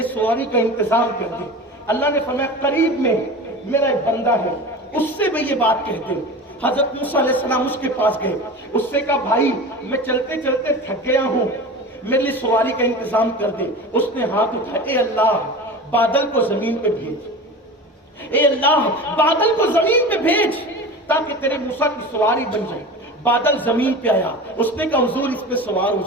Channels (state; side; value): normal; both; correlation 0.33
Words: سواری کا انتظام کر دے۔ اللہ نے فرمایا قریب میں میرا ایک بندہ ہے، اس سے میں یہ بات کہہ دے۔ حضرت موسیٰ علیہ السلام اس کے پاس گئے، اس سے کہا بھائی میں چلتے چلتے تھک گیا ہوں، میرے لیے سواری کا انتظام کر دے۔ اس نے ہاتھ اٹھایا، اے اللہ بادل کو زمین پہ بھیج، اے اللہ بادل کو زمین پہ بھیج تاکہ تیرے موسیٰ کی سواری بن جائے۔ بادل زمین پہ آیا، اس نے کہا حضور اس پہ سوار ہو